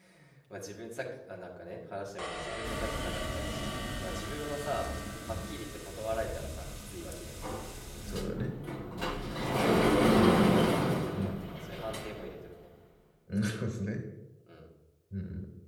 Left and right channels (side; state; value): both; identical; correlation 1.00